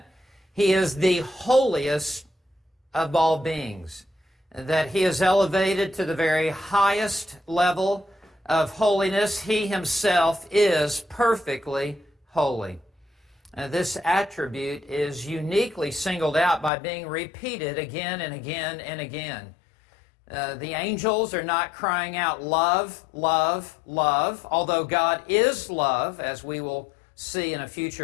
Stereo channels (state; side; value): drops out; right; at 16.7 s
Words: He is the holiest of all beings. That He is elevated to the very highest level of holiness. He Himself is perfectly holy. This attribute is uniquely singled out by being repeated again and again and again. The angels are not crying out love, love, love, although God is love, as we will see in a